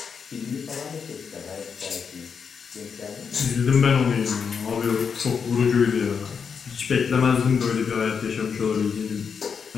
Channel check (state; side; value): quieter; right; 6.3 dB